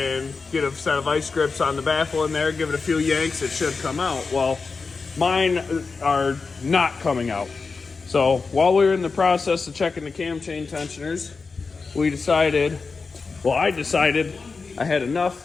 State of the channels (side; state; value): right; quieter; 4.5 dB